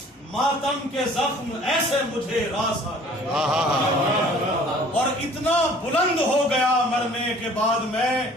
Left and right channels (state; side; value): normal; both; correlation 0.52